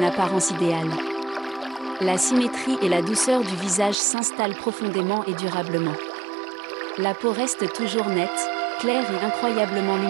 apparence idéale. La symétrie et la douceur du visage s'installent profondément et durablement. La peau reste toujours nette, claire et incroyablement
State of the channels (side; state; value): left; drops out; at 4.0 s